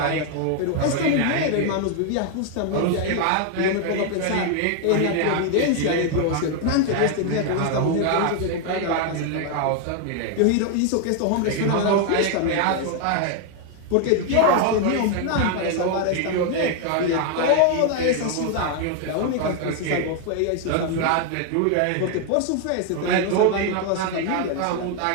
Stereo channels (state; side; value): different; both; correlation 0.00